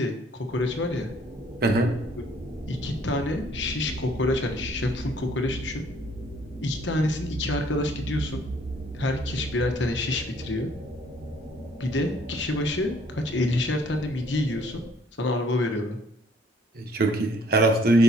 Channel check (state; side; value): normal; both; correlation 0.61